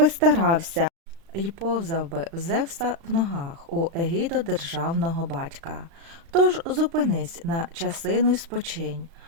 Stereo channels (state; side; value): late; left; 36 ms